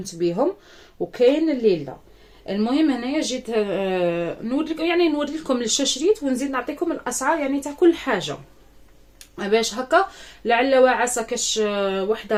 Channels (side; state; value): both; identical; correlation 1.00